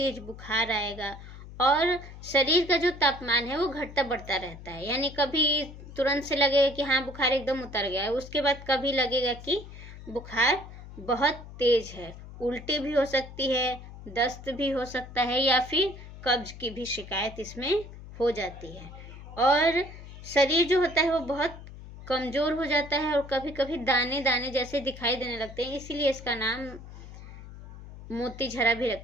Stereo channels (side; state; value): left; noise; hum, 15 dB below the sound